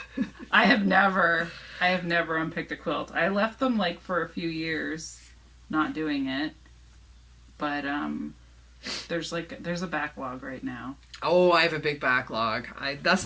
I have never unpicked a quilt. I left them like for a few years, not doing it. But there's a backlog right now. Oh, I have a big backlog.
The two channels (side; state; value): both; identical; correlation 1.00